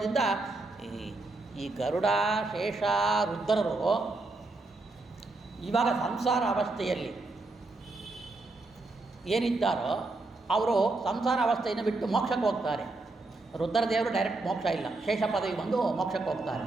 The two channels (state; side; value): quieter; left; 3.2 dB